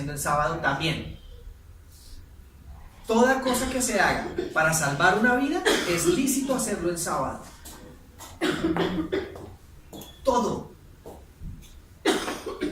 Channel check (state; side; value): identical; both; correlation 1.00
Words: el sábado también. Toda cosa que se haga para salvar una vida es lícito hacerlo el sábado. Todo.